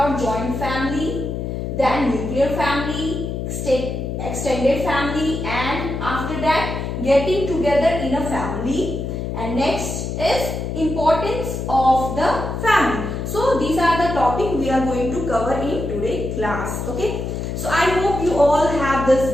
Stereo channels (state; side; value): noise; left; hum, 4 dB below the sound